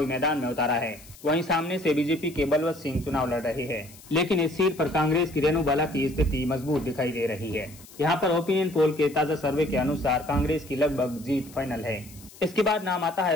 मैदान में उतारा है। वहीं सामने से बीजेपी के बलवंत सिंह चुनाव लड़ रहे हैं, लेकिन इस सीट पर कांग्रेस की रेणु बाला की स्थिति मजबूत दिखाई दे रही है। यहाँ पर ओपिनियन पोल के ताजा सर्वे के अनुसार कांग्रेस की लगभग जीत फाइनल है। इसके बाद नाम आता है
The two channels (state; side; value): noise; left; hiss, 21 dB below the sound